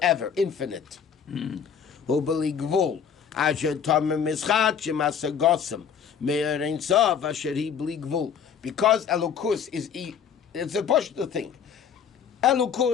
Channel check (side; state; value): right; quieter; 7.5 dB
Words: infinite. Hubali Gvul. Asher Tamim Mischat Shemasa Gossam. Me'er Ein Sof Asher Hi Bli Gvul. Because Elokus is, it's a Pashto thing.